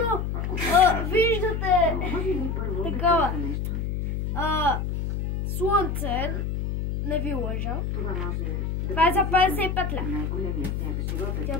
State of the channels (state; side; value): noise; left; hum, 2 dB below the sound